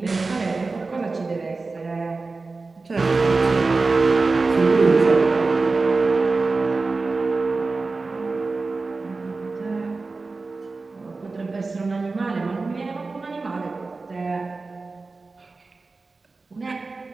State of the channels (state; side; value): quieter; left; 3.8 dB